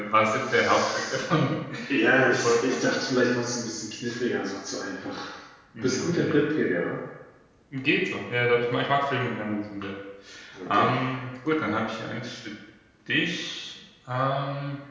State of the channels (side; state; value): both; identical; correlation 1.00